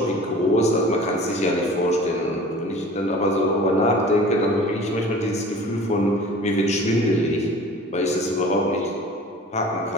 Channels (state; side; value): normal; both; correlation 0.43